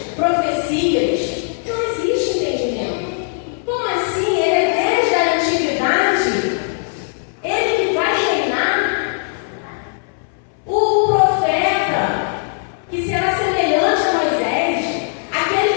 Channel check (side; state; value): right; silent; 67 dB below the other